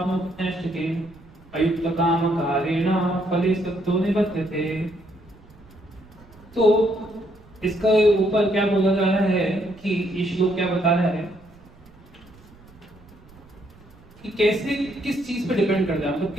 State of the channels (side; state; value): right; noise; rumble, 25 dB below the sound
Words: अयुक्त काम कारेण फले सत्तो निबध्यते। तो इसका ऊपर क्या बोला जा रहा है कि ये श्लोक क्या बता रहा है कि कैसे, किस चीज पे डिपेंड करता है, मतलब